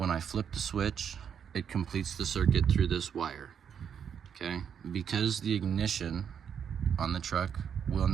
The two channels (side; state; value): left; quieter; 7.8 dB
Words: I flip the switch, it completes the circuit through this wire, okay? Because the ignition on the truck will